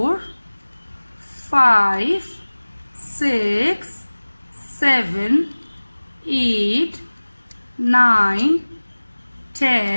5, 6, 7, 8, 9,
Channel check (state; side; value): inverted; both; correlation -1.00